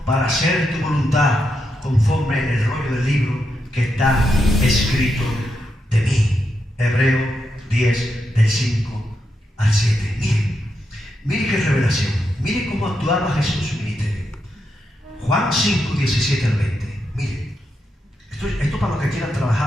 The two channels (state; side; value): normal; both; correlation 0.83